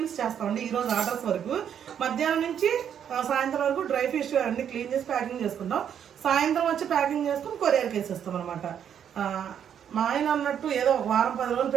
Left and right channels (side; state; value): left; quieter; 8.8 dB